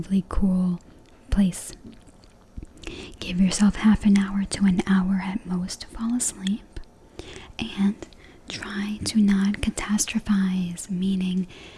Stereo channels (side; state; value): both; identical; correlation 1.00